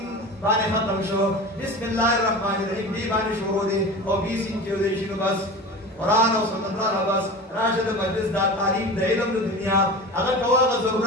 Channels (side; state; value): both; normal; correlation 0.32